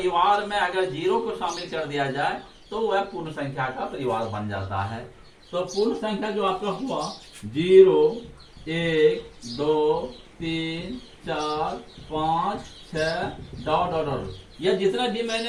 में अगर 0 को शामिल कर दिया जाए तो वह पूर्ण संख्या का परिवार बन जाता है। तो पूर्ण संख्या जो आपका हुआ 0, 1, 2, 3, 4, 5, 6 ... यह जितना भी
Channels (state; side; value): identical; both; correlation 1.00